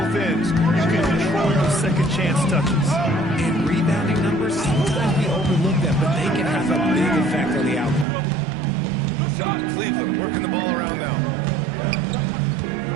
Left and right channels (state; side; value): drops out; left; at 8.1 s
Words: ends, you can control your second chance touches. And rebounding numbers, sometimes we overlook them, but they can have a big effect on the outcome. Cleveland working the ball around now.